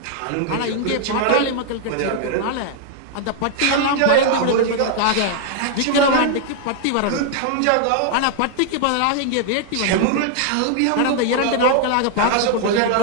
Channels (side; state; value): both; different; correlation 0.00